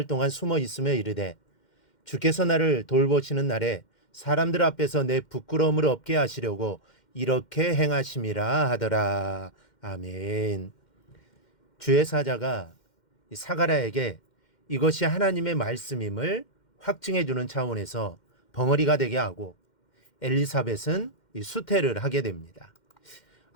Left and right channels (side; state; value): right; late; 2.1 ms